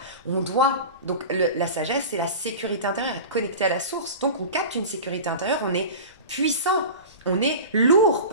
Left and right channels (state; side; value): inverted; both; correlation -0.32